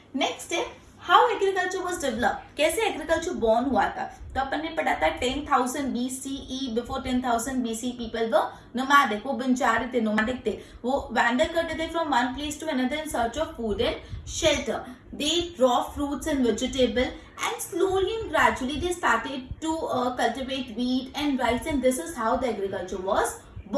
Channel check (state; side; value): identical; both; correlation 1.00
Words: next है हाउ एग्रीकल्चर वाज डेवलप. कैसे एग्रीकल्चर बॉर्न हुआ था? तो अपन ने पढ़ा था 10,000 BCE, before 10,000 BC people were nomadic, वो बंजारे थे, नोमैडिक थे, वो वैंडर करते थे from one place to another in search of food and shelter. They raw fruits and vegetable and slowly and gradually they started to cultivate wheat and rice, and this is how the agriculture was